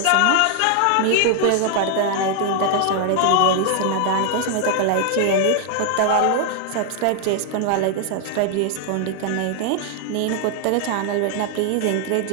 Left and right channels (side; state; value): both; different; correlation 0.00